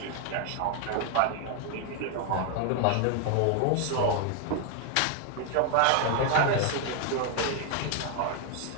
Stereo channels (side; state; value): both; different; correlation 0.00